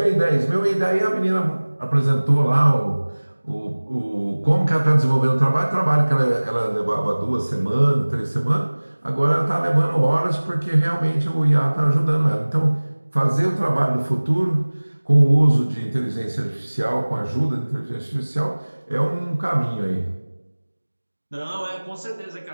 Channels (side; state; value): both; inverted; correlation -1.00